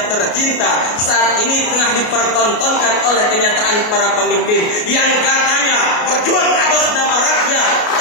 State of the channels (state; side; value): late; right; 33 ms